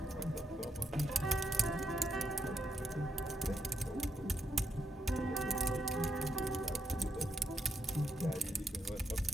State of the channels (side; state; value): both; normal; correlation 0.80